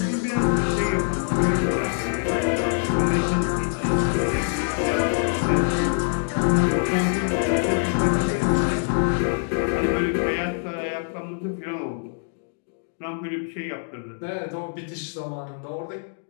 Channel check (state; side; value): silent; right; digital silence